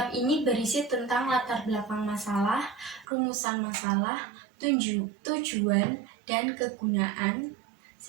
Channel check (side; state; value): left; drops out; at 3.1 s